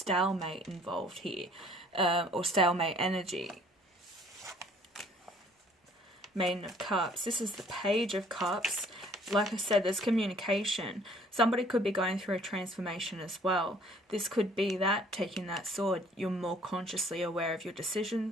involved here, or stalemate energy. Maiden of Cups. This is the Page of Cups. Like I said, there's communication. Somebody could be going through a transformation as well. This could be that, taking that sword. You're more consciously aware of your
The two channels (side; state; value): both; normal; correlation 0.57